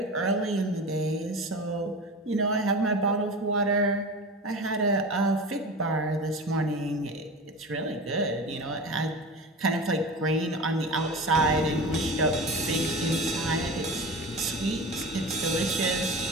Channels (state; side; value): normal; both; correlation 0.31